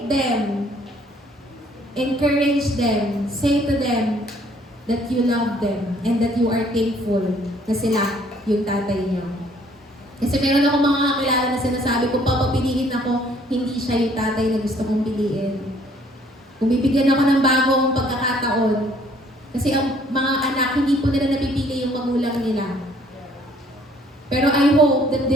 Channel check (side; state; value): both; normal; correlation 0.61